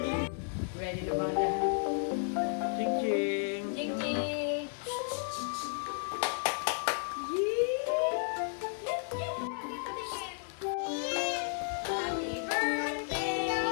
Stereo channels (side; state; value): right; silent; 56 dB below the other